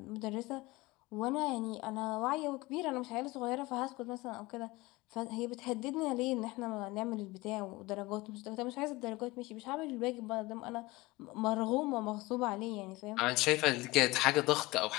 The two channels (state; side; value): quieter; right; 20.9 dB